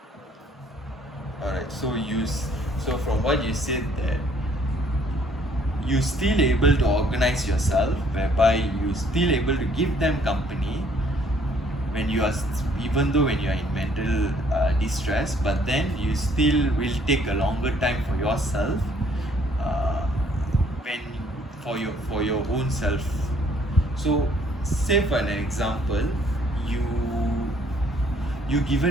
Alright. So from what you said, that you still able to organize yourself, whereby you still able to give them company when you are even though when you are in mental distress, but then you still will take a longer time for yourself, when for your own self. So say for an example, you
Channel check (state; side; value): normal; both; correlation 0.62